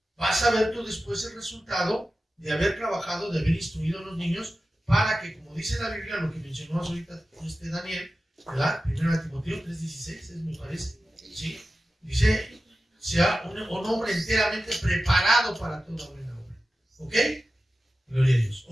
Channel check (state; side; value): normal; both; correlation 0.94